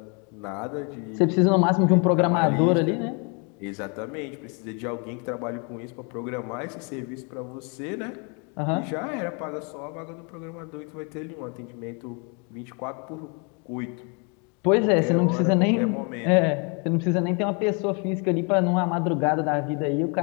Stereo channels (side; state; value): right; quieter; 35.3 dB